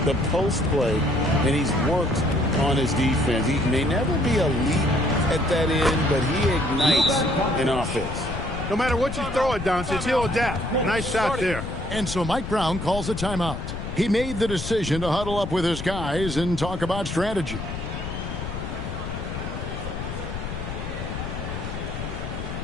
the post play, and he's worked on his defense. He may never be elite at that end, but he ignites an offense. No matter what you throw at Doncic, he'll adapt. Nice shot there. And so Mike Brown calls a timeout. He made the decision to huddle up with his guys and talk about strategy.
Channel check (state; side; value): noise; left; rumble, 6 dB below the sound